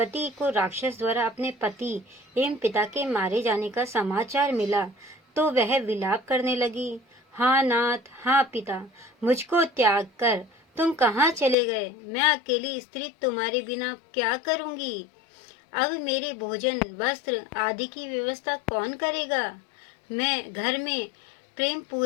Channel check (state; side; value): drops out; right; at 11.6 s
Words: को राक्षस द्वारा अपने पति एवं पिता के मारे जाने का समाचार मिला तो वह विलाप करने लगी। हाँ नाथ, हाँ पिता, मुझको त्याग कर तुम कहाँ चले गए? मैं अकेली स्त्री तुम्हारे बिना क्या करूँगी? अब मेरे भोजन, वस्त्र आदि की व्यवस्था कौन करेगा? मैं घर में प्रेम